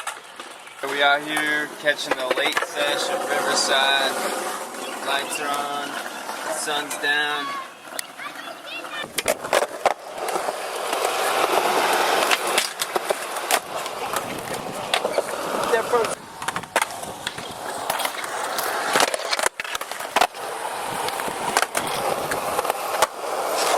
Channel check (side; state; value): both; identical; correlation 1.00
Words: We out here catching the late sesh at Riverside. Lights are on, the sun's down.